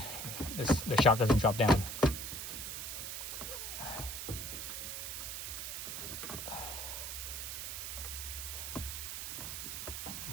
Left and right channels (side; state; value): right; noise; hiss, 5 dB below the sound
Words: the shock doesn't drop down.